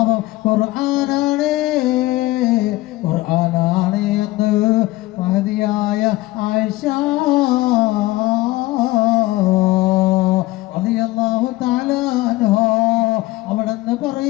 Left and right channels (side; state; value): right; quieter; 18.7 dB